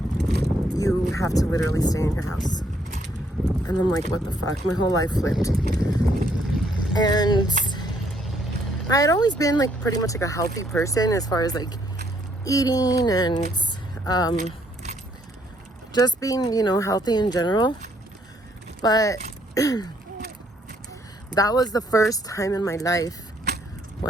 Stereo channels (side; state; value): both; normal; correlation 0.69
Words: you have to literally stay in your house. And I'm like, what the fuck? My whole life flipped. And I had always been like pretty much like a healthy person as far as like eating and just being, you know, healthy in general. But that was the first time in my life